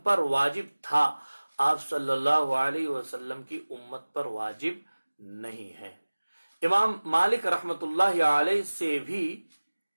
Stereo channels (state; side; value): inverted; both; correlation -1.00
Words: پر واجب تھا، آپ صلی اللہ علیہ وسلم کی امت پر واجب نہیں ہے۔ امام مالک رحمت اللہ علیہ سے بھی